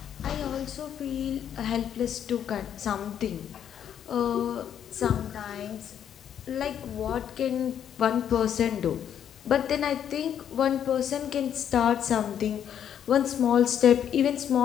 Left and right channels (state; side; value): quieter; right; 9.3 dB